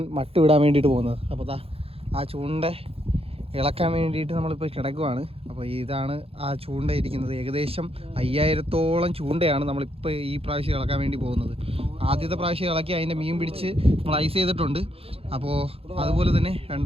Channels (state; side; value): late; left; 0.28 ms